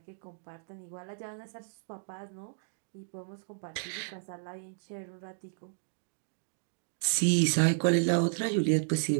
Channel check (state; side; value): silent; left; digital silence